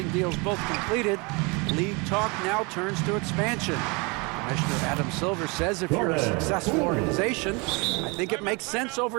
deals both completed, league talk now turns to expansion. Commissioner Adam Silver says if you're a successful organization, I think it makes sense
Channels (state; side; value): quieter; left; 28.9 dB